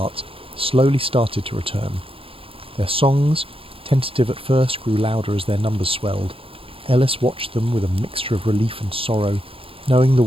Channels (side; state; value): left; late; 0.27 ms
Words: slowly started to return. Their songs, tentative at first, grew louder as their numbers swelled. Ellis watched them with a mixture of relief and sorrow, knowing the